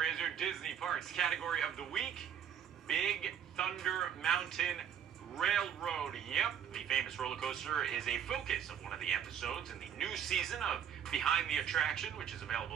is your Disney Parks category of the week, Big Thunder Mountain Railroad. Yep, the famous roller coaster is a focus of one of the episodes in the new season of Behind the Attraction, which is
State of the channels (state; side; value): quieter; left; 8.8 dB